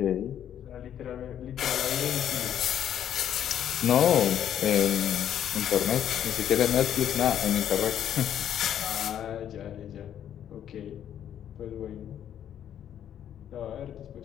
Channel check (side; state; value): right; quieter; 10.1 dB